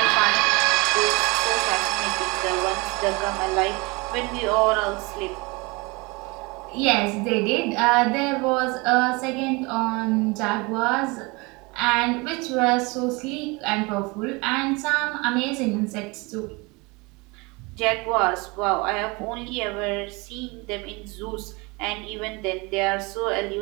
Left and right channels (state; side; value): quieter; left; 26.5 dB